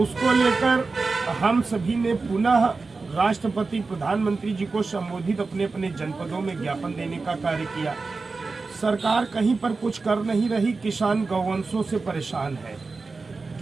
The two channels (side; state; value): left; quieter; 4.0 dB